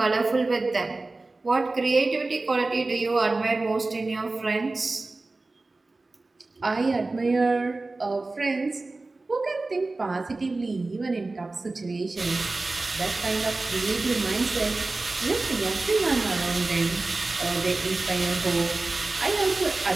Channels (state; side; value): quieter; left; 3.3 dB